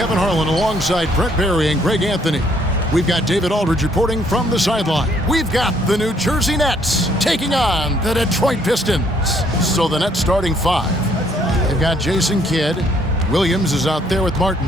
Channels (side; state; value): both; normal; correlation 0.66